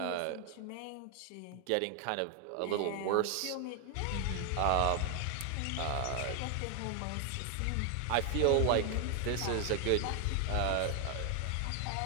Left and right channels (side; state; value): both; different; correlation 0.00